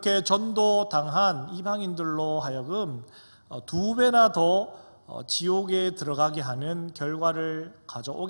전도당한 이방인들로 하여금 2배나 더 지옥에 들어가게 하는 결과를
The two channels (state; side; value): inverted; both; correlation -1.00